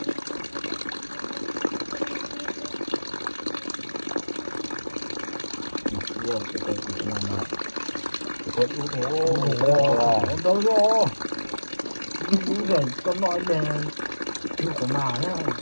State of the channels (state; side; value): inverted; both; correlation -1.00